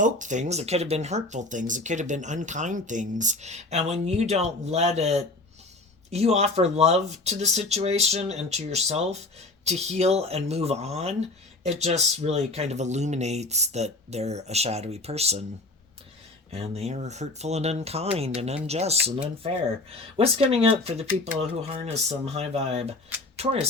things that could have been hurtful things, it could have been unkind things. And when you don't let it, you offer love to the situation and to yourself to heal and move on, it just really kind of illuminates that they're a shadowy person. And they are hurtful and unkind and unjust and unfair. What's coming up for the people who harness some high vibe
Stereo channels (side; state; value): right; quieter; 3.0 dB